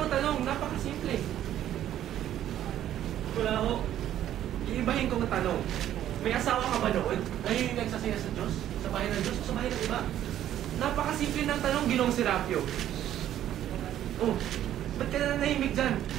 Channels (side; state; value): left; quieter; 11.7 dB